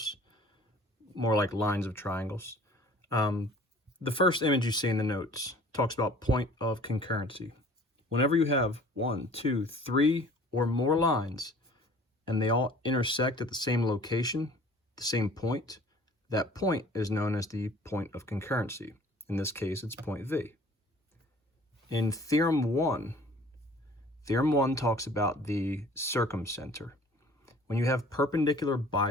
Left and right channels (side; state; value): both; normal; correlation 0.50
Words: more like lines of triangles. The first image you see in the notes talks about point of concurrency. Whenever you have 1, 2, 3 or more lines and they all intersect at the same location, the same point, that point is known as the point of concurrency. In this case, it's point V. In Theorem 1 talks about the circumcenter. When you have perpendicular